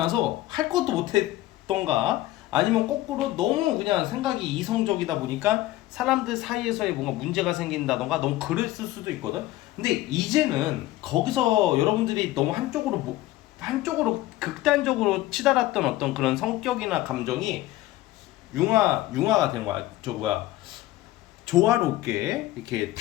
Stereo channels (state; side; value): quieter; right; 16.4 dB